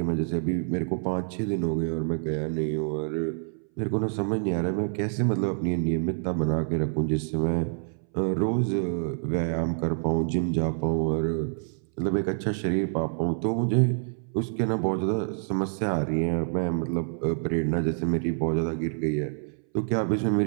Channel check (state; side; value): silent; left; 60 dB below the other